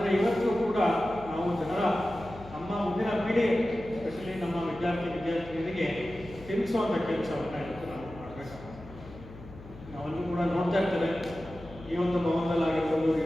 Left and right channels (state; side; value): noise; left; hum, 16 dB below the sound